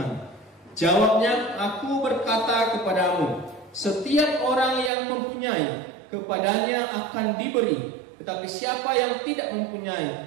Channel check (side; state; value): left; drops out; at 4.9 s